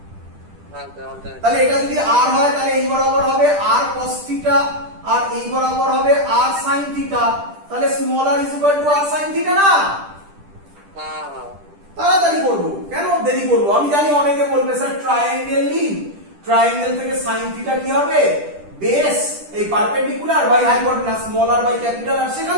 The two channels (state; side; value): late; left; 10 ms